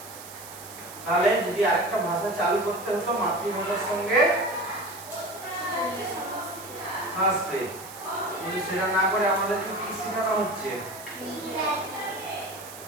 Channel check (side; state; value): right; noise; hiss, 15 dB below the sound